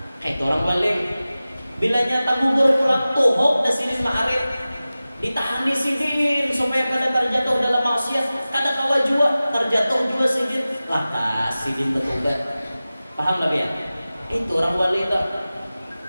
Kayak orang wali, bila nyata gugur pulang tuhok dan sini ma'arif, ditahan di sidin supaya kada terjatuh dalam maksiat, kada kawa jua terjatuh jua sidin, lakas sidin bertobat. Paham tak ya? Itu orang wali tak.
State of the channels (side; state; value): both; inverted; correlation -0.96